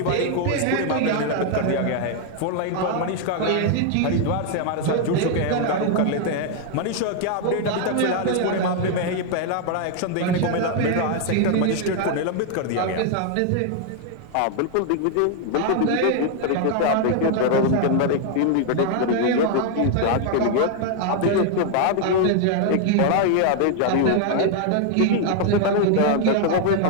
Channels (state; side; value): different; both; correlation 0.00